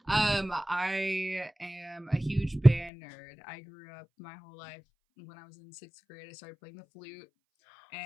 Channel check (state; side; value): drops out; right; at 2.9 s